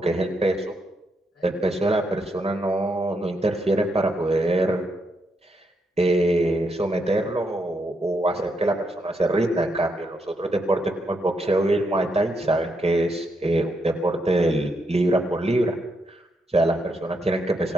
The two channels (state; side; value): normal; both; correlation 0.80